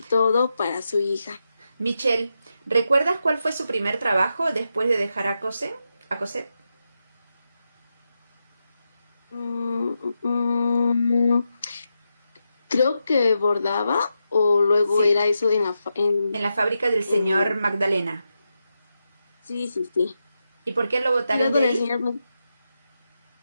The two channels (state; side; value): inverted; both; correlation -0.87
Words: todo para su hija. Michelle, ¿recuerdas cuál fue su primer trabajo después de dejar a Cosette? Mm, mm, Creo que bordaba o luego Sí, era eso en la fábrica del señor en- Magdalena. sí, sí, sí. ¿Y por qué lo Y botaron luego de del ahí? señor